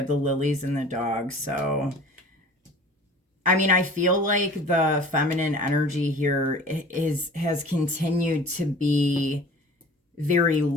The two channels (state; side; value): normal; both; correlation 0.43